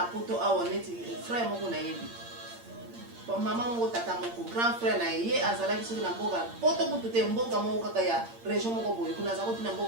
poto awoneti frère moko na yebi. Bon maman moko tata moko grand frère na ye azala ki soki na mboka poto kutu te mboka moko kaka ya région moko boye kuna za kotina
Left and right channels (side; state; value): left; late; 8.7 ms